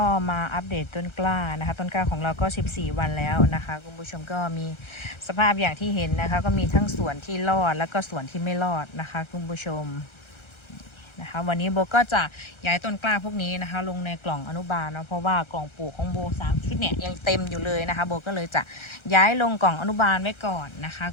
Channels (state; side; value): late; right; 1.3 ms